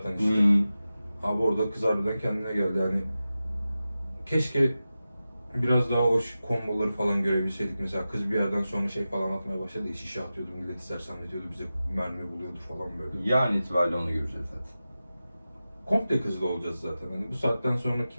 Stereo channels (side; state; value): both; inverted; correlation -0.94